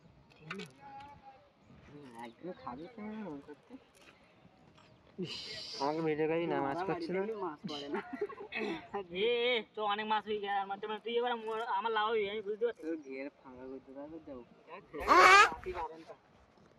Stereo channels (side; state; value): both; identical; correlation 1.00